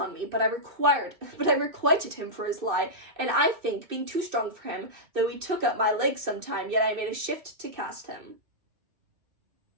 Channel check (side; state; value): left; late; 2.6 ms